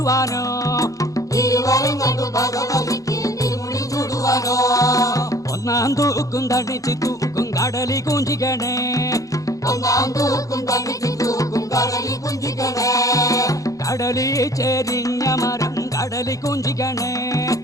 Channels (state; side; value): late; right; 0.16 ms